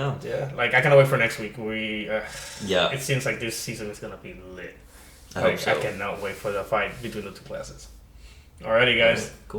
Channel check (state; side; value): identical; both; correlation 1.00